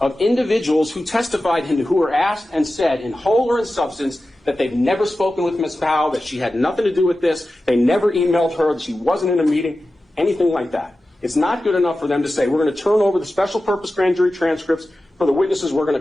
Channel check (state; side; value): normal; both; correlation 0.94